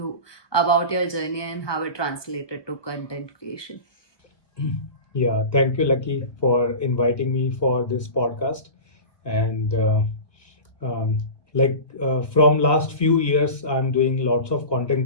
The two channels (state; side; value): late; right; 1.2 ms